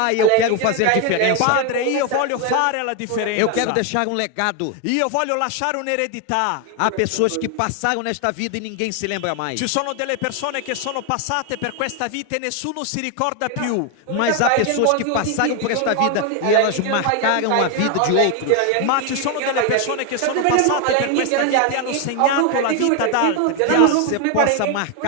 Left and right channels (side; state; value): both; different; correlation 0.01